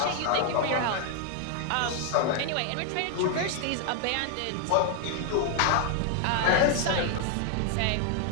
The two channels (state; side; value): different; both; correlation 0.00